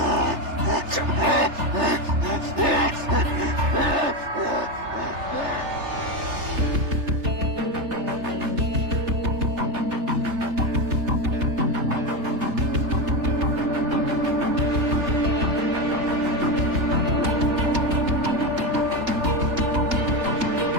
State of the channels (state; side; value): late; left; 3.3 ms